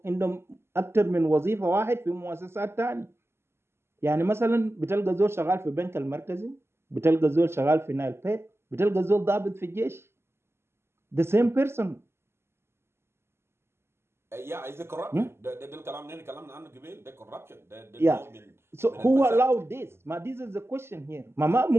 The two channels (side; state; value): left; late; 0.12 ms